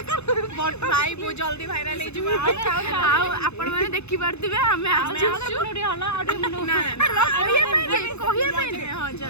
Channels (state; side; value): late; right; 0.81 ms